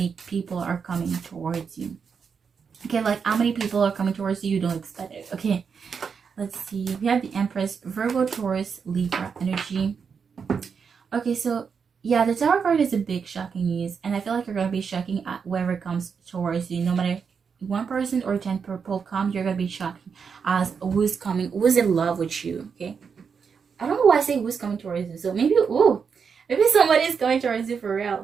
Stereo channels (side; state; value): left; quieter; 6.2 dB